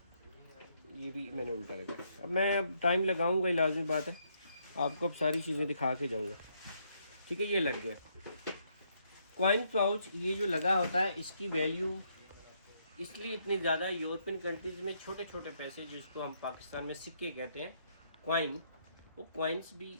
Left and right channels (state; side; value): inverted; both; correlation -0.73